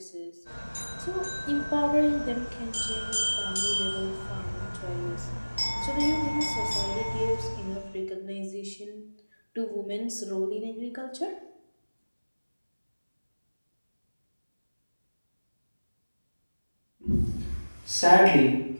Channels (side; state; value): both; inverted; correlation -1.00